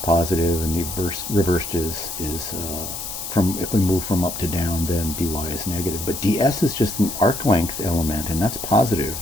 and the reversed is if we move from up to down, then dy is negative. But ds is just an arc length element, and that's positive,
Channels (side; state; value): left; noise; hiss, 7 dB below the sound